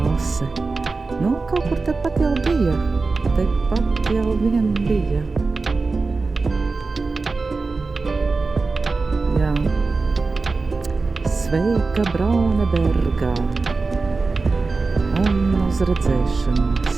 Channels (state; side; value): quieter; left; 4.0 dB